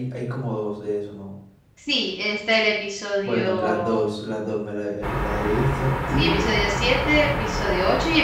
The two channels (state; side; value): identical; both; correlation 1.00